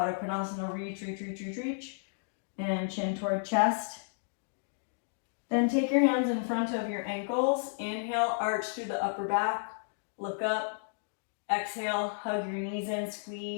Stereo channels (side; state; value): right; silent; digital silence